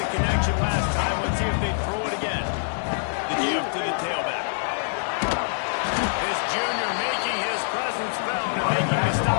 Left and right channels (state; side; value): silent; right; 62 dB below the other